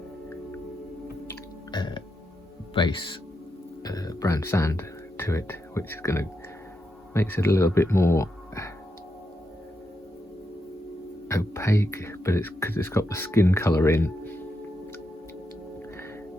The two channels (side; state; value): both; normal; correlation 0.84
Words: base brown sand to it, which is going to makes it a little bit more opaque, but it's because it's got the skin colour in,